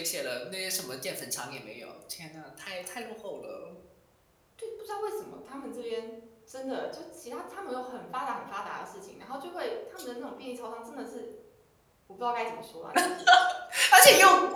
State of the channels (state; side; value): identical; both; correlation 1.00